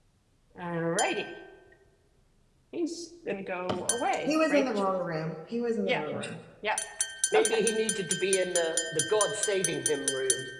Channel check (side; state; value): both; identical; correlation 1.00